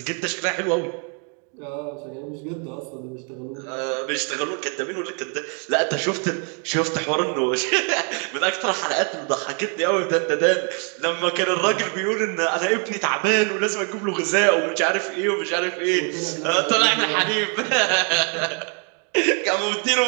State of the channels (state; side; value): quieter; left; 39.5 dB